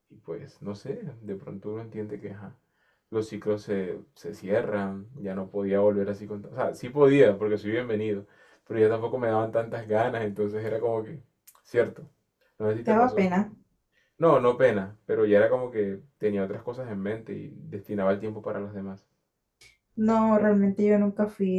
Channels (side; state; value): both; identical; correlation 1.00